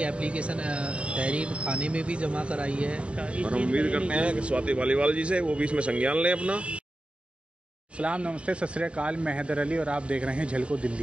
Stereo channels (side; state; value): left; late; 0.059 ms